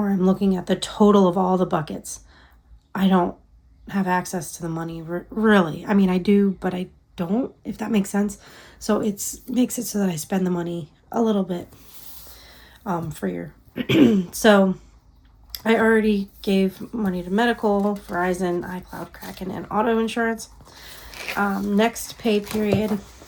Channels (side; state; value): both; identical; correlation 1.00